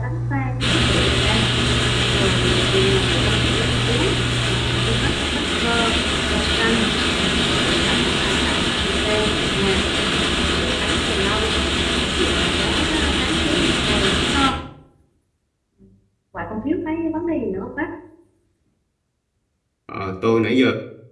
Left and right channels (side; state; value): both; identical; correlation 1.00